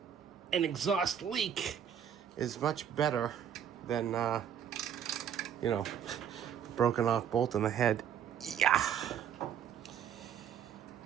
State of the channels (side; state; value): left; quieter; 8.9 dB